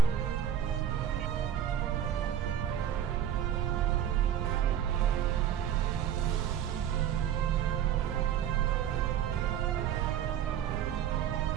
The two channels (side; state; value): left; quieter; 9.8 dB